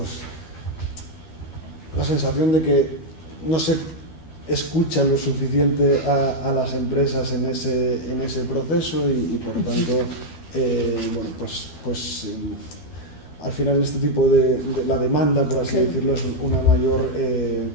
la sensación de que no se escucha lo suficiente a las empresas en ese proceso y por tanto, bueno, pues al final este tipo de la demanda, por así decirlo, es una mayor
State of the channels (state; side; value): late; right; 12 ms